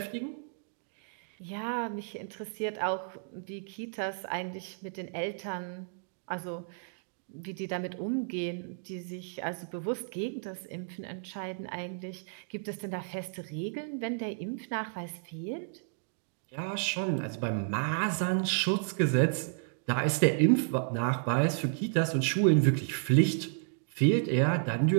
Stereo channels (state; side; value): silent; left; digital silence